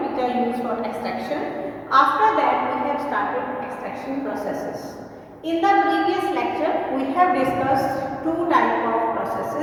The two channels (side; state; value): both; identical; correlation 1.00